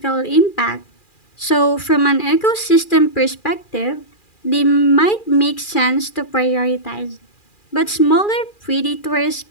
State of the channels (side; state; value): right; late; 2.4 ms